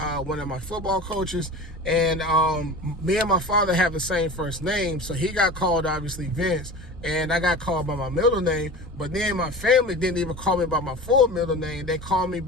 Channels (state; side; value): normal; both; correlation 0.34